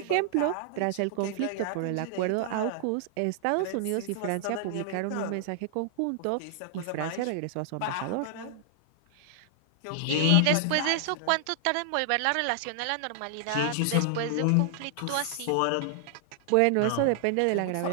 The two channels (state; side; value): different; both; correlation -0.01